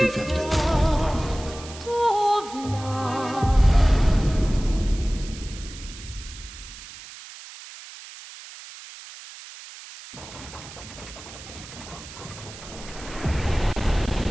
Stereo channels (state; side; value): noise; right; hiss, 15 dB below the sound